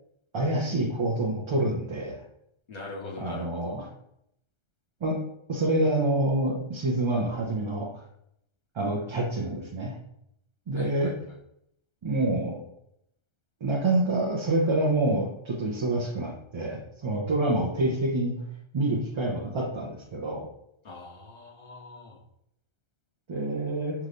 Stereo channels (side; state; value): left; late; 1.3 ms